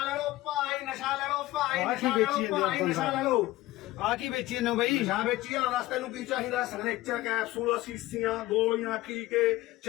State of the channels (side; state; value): right; quieter; 17.6 dB